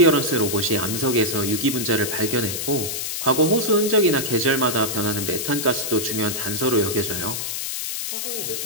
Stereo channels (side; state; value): left; noise; hiss, 3 dB below the sound